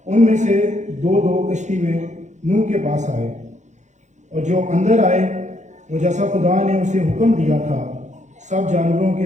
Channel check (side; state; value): left; late; 0.34 ms